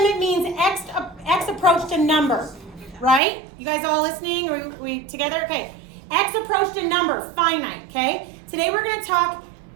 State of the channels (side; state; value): left; drops out; at 3.2 s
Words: means x approached a number, right? You guys all listening? Are we together? Okay. X approached a number, finite, okay? Today we're going to talk